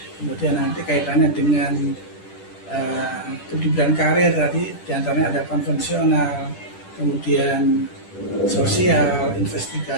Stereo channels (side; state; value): right; late; 10 ms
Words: Kemudian nanti kaitannya dengan kehidupan karir tadi diantaranya ada konvensional, kemudian sosial,